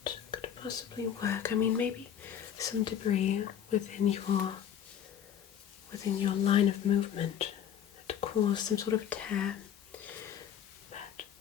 could possibly work. I mean, maybe some debris within your line of movement that caused some sort of tear. But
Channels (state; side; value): quieter; right; 9.2 dB